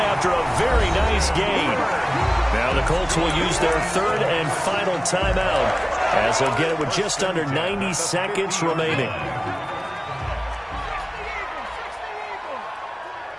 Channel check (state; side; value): identical; both; correlation 1.00